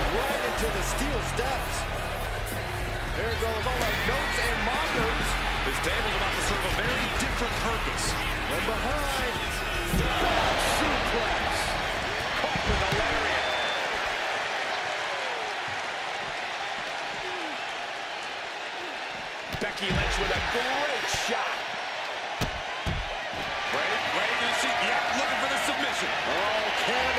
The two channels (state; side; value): identical; both; correlation 1.00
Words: right into the steel steps. There goes all our notes and mockers. This table's about to serve a very different purpose. From behind. Suplex. Caught with a lariat. Becky Lynch with a great shot. Ready to see? Yeah, looking for the submission. Oh,